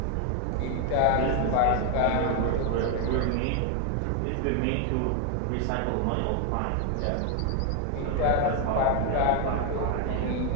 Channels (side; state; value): both; different; correlation 0.01